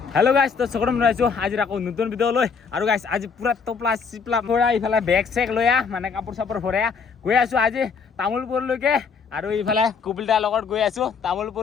হেল্ল' গাইছ তো চকৰম ৰাইছো আজি আকৌ নতুন ভিডিঅ' লৈ আৰু গাইছ আজি পুৰা টপলা চিপলা ভৰা ইফালে বেগ চেক লৈ মানে কাপোৰ চাপোৰ ভৰাই গৈ আছো আজি তামোলপুৰলৈকে আৰু ইফালে কুবিলদাৰ লগত গৈ আছো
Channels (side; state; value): right; quieter; 5.7 dB